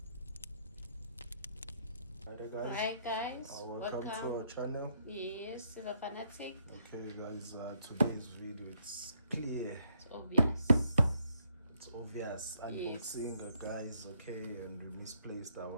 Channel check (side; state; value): both; inverted; correlation -0.72